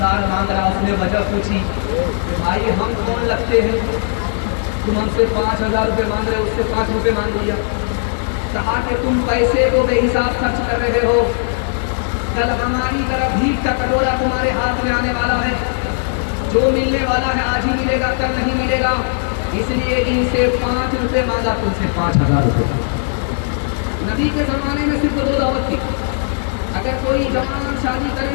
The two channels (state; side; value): silent; right; 55 dB below the other